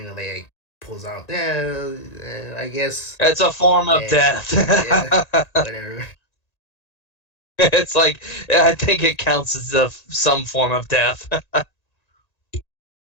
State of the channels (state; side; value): late; right; 1.9 ms